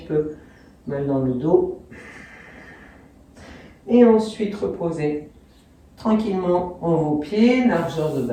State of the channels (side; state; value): both; identical; correlation 1.00